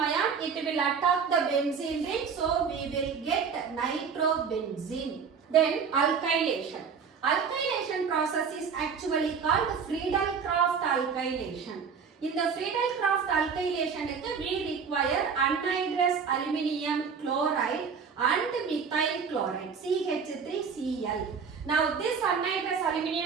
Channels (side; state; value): left; quieter; 6.2 dB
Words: ion it will attack the benzene ring, so we will get nitrobenzene. Then alkylation. Alkylation process is actually called Friedel-Crafts alkylation. In the Friedel-Crafts alkylation we require anhydrous aluminium chloride and methyl chloride CH3Cl. Now this anhydrous